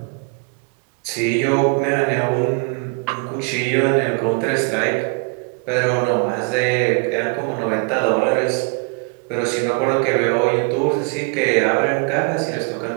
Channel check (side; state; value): left; quieter; 35.9 dB